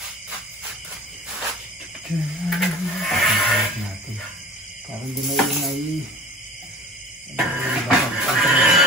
Parang di may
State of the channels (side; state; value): both; normal; correlation 0.41